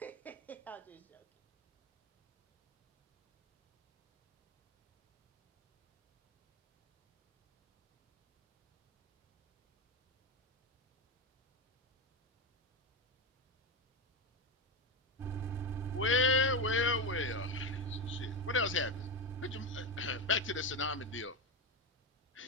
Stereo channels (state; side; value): normal; both; correlation 0.13